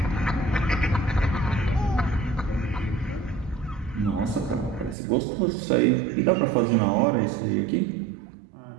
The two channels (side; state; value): left; drops out; at 5.0 s